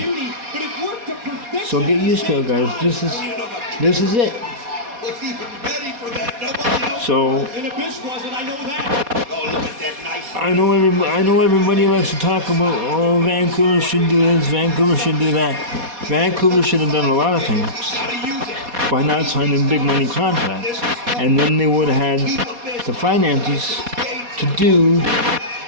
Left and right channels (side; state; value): left; late; 4.2 ms